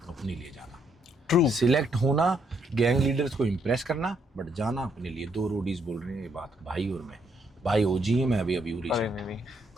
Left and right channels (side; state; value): both; normal; correlation 0.73